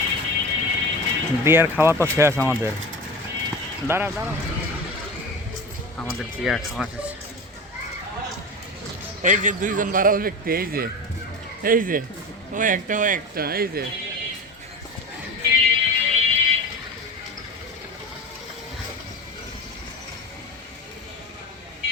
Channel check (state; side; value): normal; both; correlation 0.30